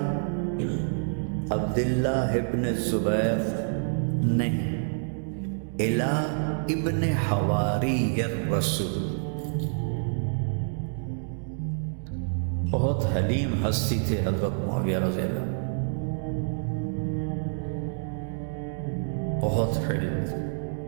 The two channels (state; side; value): silent; left; digital silence